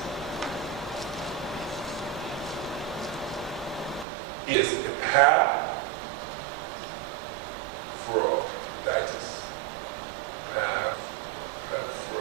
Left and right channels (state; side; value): drops out; left; at 4.0 s